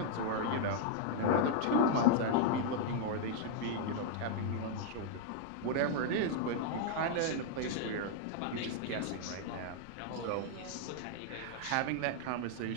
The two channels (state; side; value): different; both; correlation -0.01